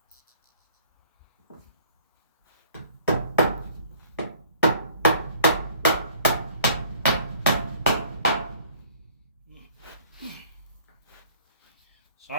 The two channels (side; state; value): both; inverted; correlation -0.54